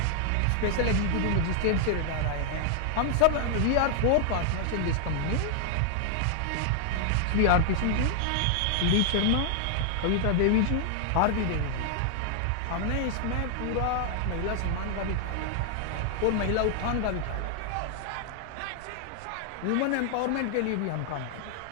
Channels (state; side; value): different; both; correlation 0.00